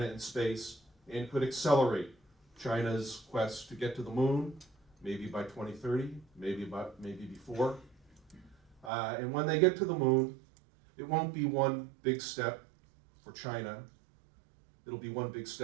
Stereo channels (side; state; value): left; drops out; at 8.9 s